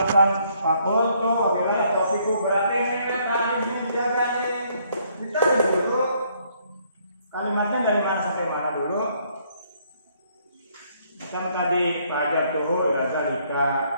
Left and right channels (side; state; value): both; inverted; correlation -0.67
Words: fakultu wabillahi atau fiqhu berarti ini kan harus dijaga nih. Kita dulu kalimatnya dari mana sampai mana dulu? Macam tadi fajar tuh zalika